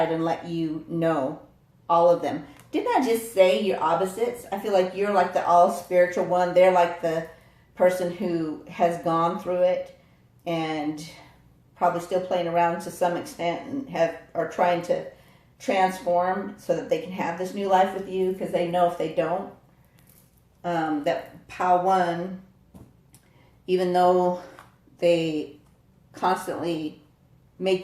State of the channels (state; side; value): identical; both; correlation 1.00